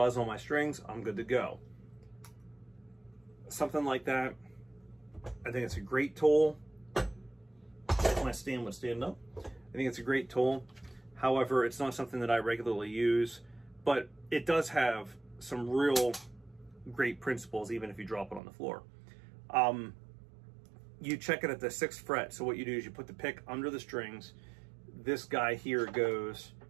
on my strings, I'm good to go. Something like that, I think it's a great tool. My stand would stand up. I think it's a great tool. However, it's not something that I regularly use, but it does have some real great principles, even if you drop it on the floor. You check it at the 6th fret. So what you do is you put the pick under the strings. This guy here goes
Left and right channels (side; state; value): left; drops out; at 18.4 s